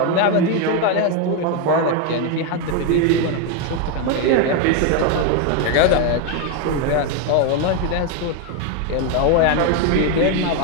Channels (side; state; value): both; different; correlation 0.01